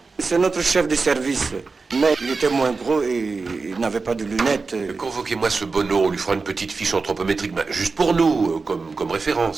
C'est notre chef de service. Mais il était moins gros et il n'avait pas de lunettes. Convoquez-moi ce Bono, on lui fera une petite fiche anthropométrique, juste pour nous, comme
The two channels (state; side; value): quieter; left; 4.3 dB